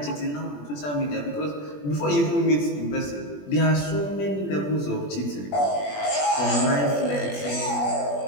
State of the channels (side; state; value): right; late; 21 ms